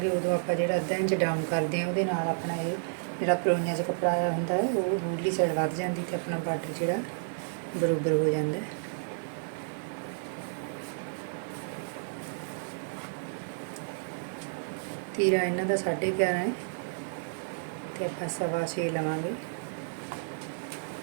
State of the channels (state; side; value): silent; left; 57 dB below the other